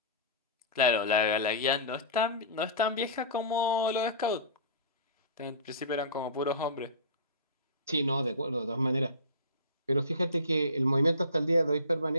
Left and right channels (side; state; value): both; inverted; correlation -0.33